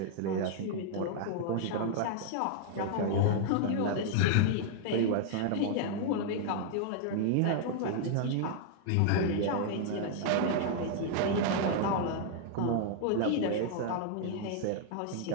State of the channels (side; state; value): both; different; correlation -0.01